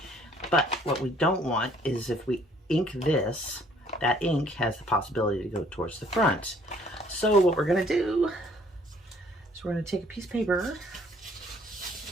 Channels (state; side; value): normal; both; correlation 0.60